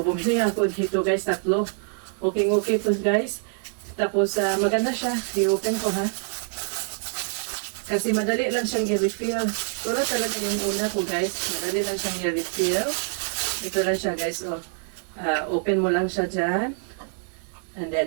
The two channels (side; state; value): left; silent; 61 dB below the other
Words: bumili ako dito guys, tatlo. Okay to guys. Tapos maganda siya. I-open ko ha. Kasi madali lang siyang i-refill. Wala talaga yung una ko guys. Madali lang siyang i-refill. Ito lang siya guys. So, open mo lang siya dyan. And